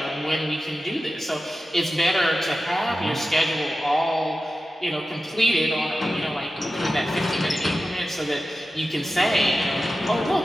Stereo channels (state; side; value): normal; both; correlation 0.94